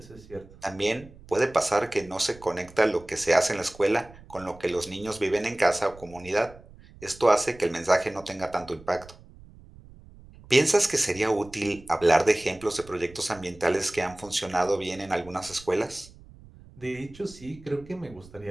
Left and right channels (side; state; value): right; noise; rumble, 21 dB below the sound